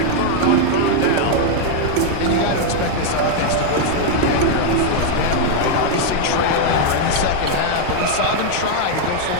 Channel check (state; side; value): different; both; correlation 0.00